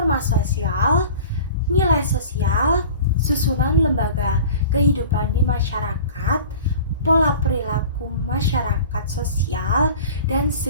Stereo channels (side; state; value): both; inverted; correlation -0.40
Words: sosial, nilai sosial, susunan lembaga kehidupan di masyarakat, pola perilaku masyarakat sosial, dan